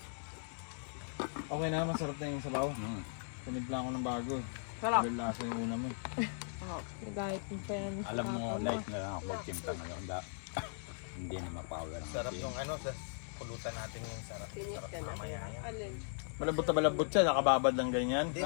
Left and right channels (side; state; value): right; silent; digital silence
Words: Okay na, masarap na yung sabaw. Tinimpla ko ng bago. Sarap. Dahil lasa yung una mo. Nagahit mo pa yan. Alam mo, light na lang ako magtimpla ngayon. Hindi na mapower ang Sarap game. yung ano, sa pulutan natin yung sarap. Sarap mamaya yan. Alin? Malambot na malambot siya, nakababad lang ganyan. Hindi,